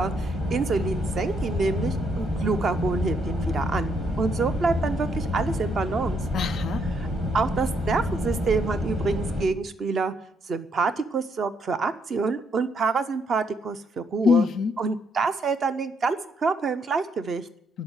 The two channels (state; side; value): normal; both; correlation 0.73